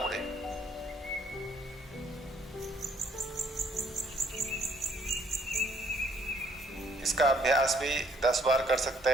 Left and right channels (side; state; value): both; normal; correlation 0.65